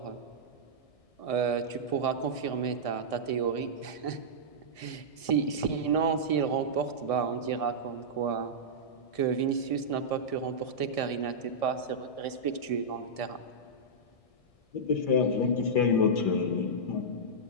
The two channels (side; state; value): right; late; 1.6 ms